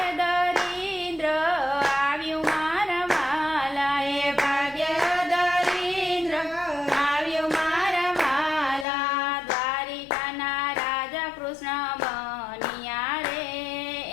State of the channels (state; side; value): drops out; right; at 8.8 s